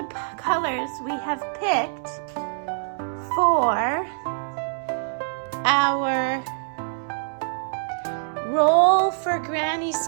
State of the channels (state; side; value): silent; left; 62 dB below the other